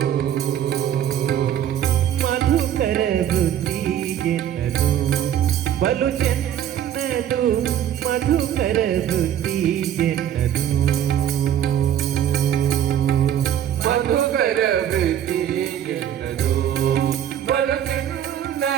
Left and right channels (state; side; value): quieter; left; 10.3 dB